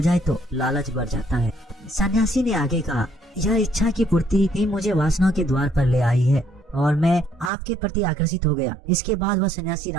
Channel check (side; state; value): left; drops out; at 7.5 s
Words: जाए तो लालच बढ़ जाता है। सन्यासी ने आगे कहा, यह इच्छा की पूर्ति ही मुझे वासना के द्वार पर ले आई है और मैं आपके प्रति आकर्षित हो गया। इसके बाद वह सन्यासी